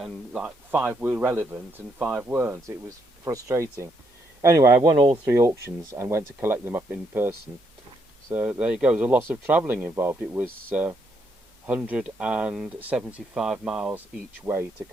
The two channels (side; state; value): both; normal; correlation 0.75